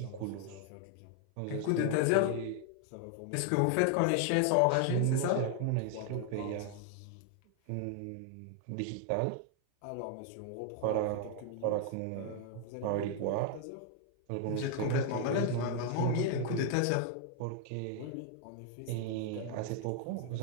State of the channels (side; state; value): both; different; correlation 0.00